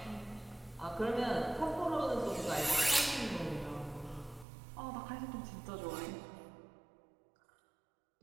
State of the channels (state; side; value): drops out; left; at 4.5 s